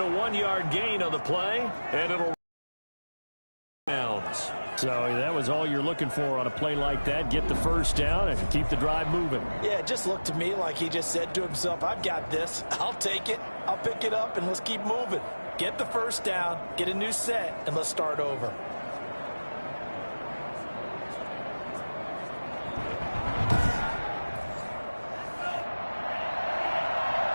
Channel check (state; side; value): inverted; both; correlation -1.00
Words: 1-yard gain on the play, and it'll bounds. So that was all you're looking for on a play like that. Get the 1st down and keep the drive moving. Yeah, it just looked to me like he just said to himself, I've got this. I'll take it. I'll pick it up, and let's keep moving. Get the 1st down, get a new set, and let's start over.